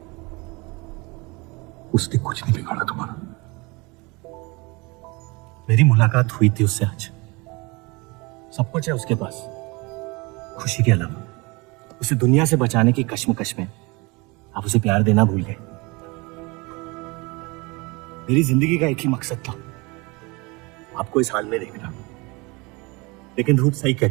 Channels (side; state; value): left; quieter; 26.2 dB